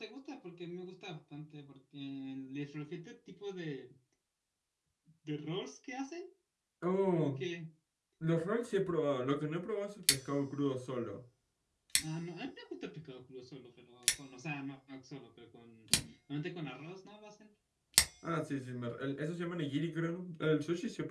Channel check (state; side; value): identical; both; correlation 1.00